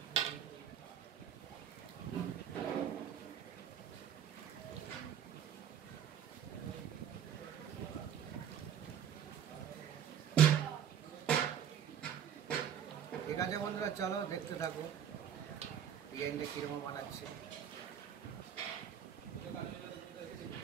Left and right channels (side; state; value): left; quieter; 8.9 dB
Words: ঠিক আছে বন্ধুরা, চলো দেখতে থাকো ডিজাইনটা কীরকম বানাচ্ছি।